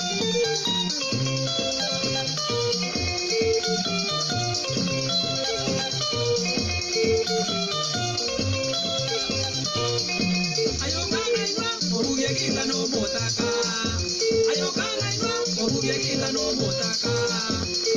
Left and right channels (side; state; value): both; identical; correlation 1.00